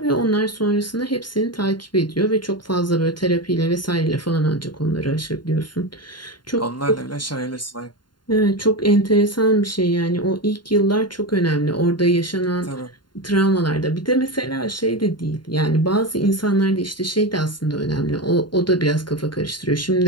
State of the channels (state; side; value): late; right; 0.71 ms